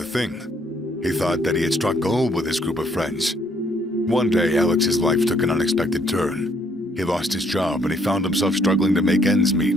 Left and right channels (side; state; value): both; normal; correlation 0.67